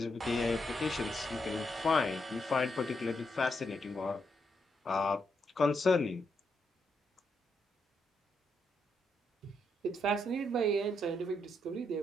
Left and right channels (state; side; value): normal; both; correlation 0.79